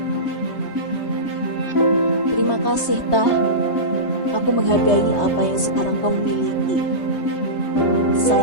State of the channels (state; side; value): late; right; 3.2 ms